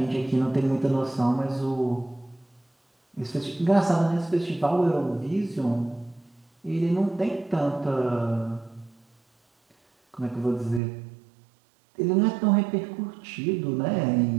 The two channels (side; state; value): left; drops out; at 10.8 s